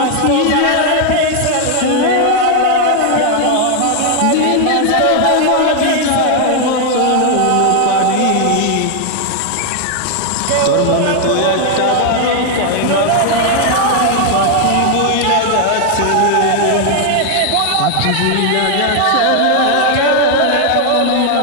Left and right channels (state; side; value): different; both; correlation 0.00